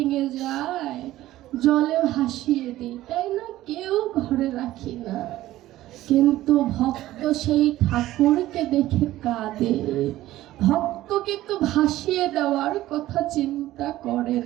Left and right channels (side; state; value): left; quieter; 15.3 dB